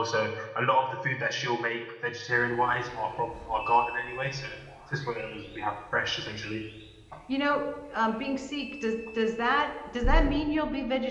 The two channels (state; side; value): identical; both; correlation 1.00